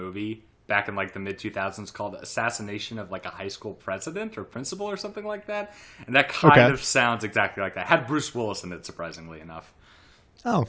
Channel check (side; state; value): both; identical; correlation 1.00